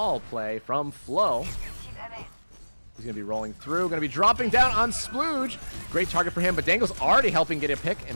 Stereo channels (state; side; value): inverted; both; correlation -1.00